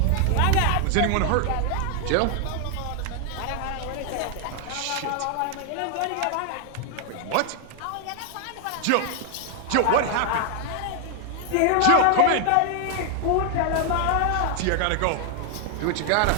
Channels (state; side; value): different; both; correlation 0.00